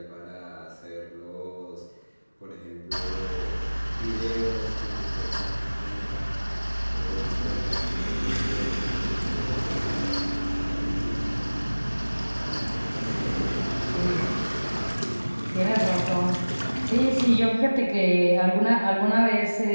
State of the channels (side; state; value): both; inverted; correlation -1.00